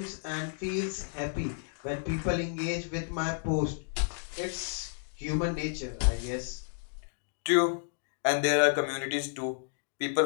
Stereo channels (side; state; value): right; silent; digital silence